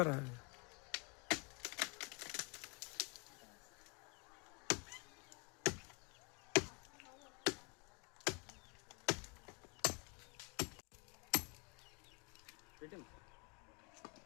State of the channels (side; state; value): right; quieter; 32.5 dB